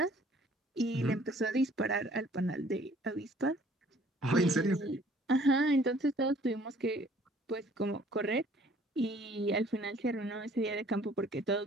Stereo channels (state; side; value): normal; both; correlation 0.57